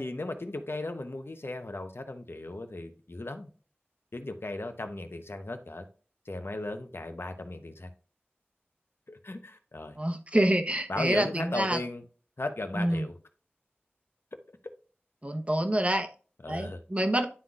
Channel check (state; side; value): normal; both; correlation 0.88